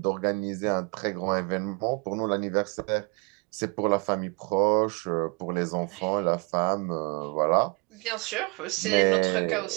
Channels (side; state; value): left; quieter; 30.2 dB